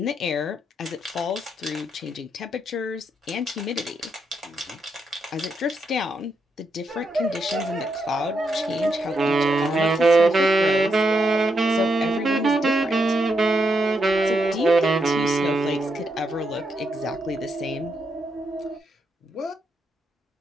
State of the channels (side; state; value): both; normal; correlation 0.81